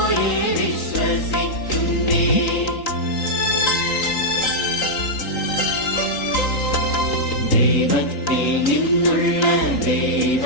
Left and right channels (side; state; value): right; late; 3.8 ms